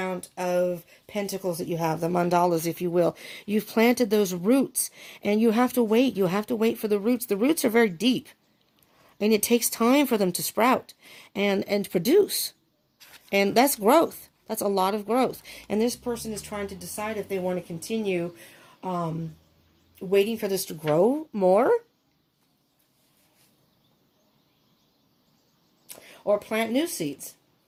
of pentacles that you have, the mandalas, if you will. You've planted those roots, and you have to wait. You have to wait for the roots. The roots are very deep, and it takes time for them to sprout and produce. And that's growth. That's a lot of growth. And this person is trying to decide if they want to continue waiting for this to grow more, or plant new seeds,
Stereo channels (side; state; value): both; identical; correlation 1.00